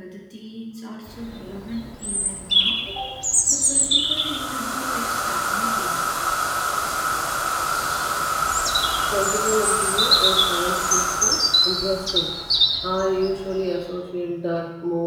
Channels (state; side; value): identical; both; correlation 1.00